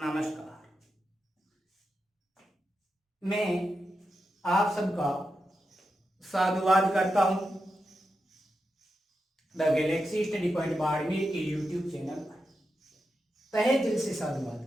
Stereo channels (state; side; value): normal; both; correlation 0.88